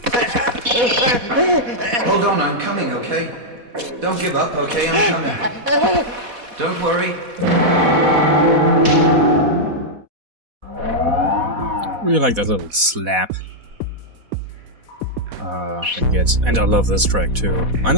Hold on, I'm coming, okay? Don't give up, okay? I'm coming. Don't worry. Really like that little slap. I guess. And I love this track too. I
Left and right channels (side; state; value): left; late; 4.1 ms